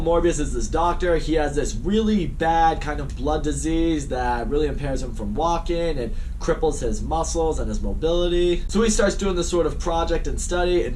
Morbius is this doctor. He has this really bad kind of blood disease that really impairs him from walking and cripples his muscles and his mobility. So he starts doing this sort of project and study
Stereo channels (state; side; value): identical; both; correlation 1.00